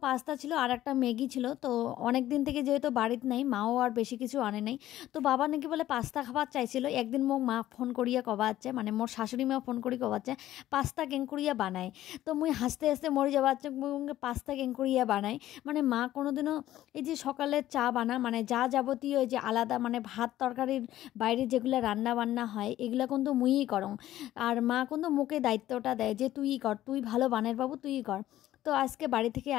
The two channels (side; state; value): right; quieter; 13.8 dB